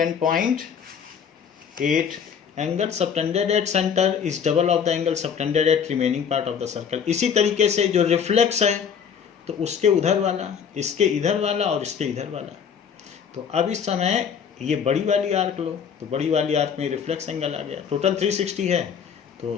angle subtended at center is double of the angle subtended at remaining part of the circle। इसी तरीके से जो रिफ्लेक्स है, तो उसके उधर वाला, इसके इधर वाला और इसके इधर वाला। तो अब इस समय ये बड़ी वाली आर्क लो, तो बड़ी वाली आर्क में रिफ्लेक्स एंगल आ गया, टोटल 360 है,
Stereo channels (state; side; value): quieter; right; 7.3 dB